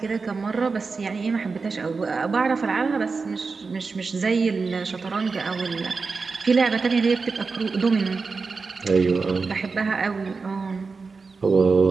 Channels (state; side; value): quieter; left; 4.5 dB